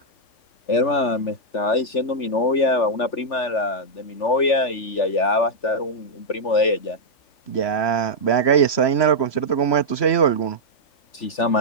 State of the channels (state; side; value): late; right; 3.4 ms